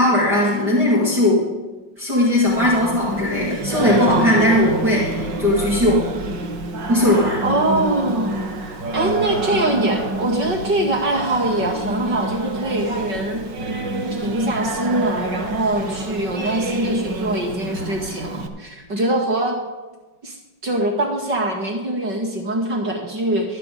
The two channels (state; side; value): late; left; 5.2 ms